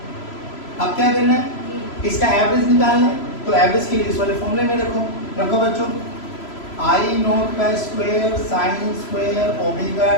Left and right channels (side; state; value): right; late; 3.0 ms